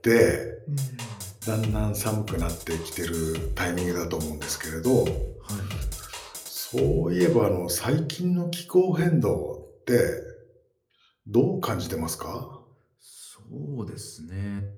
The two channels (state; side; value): identical; both; correlation 1.00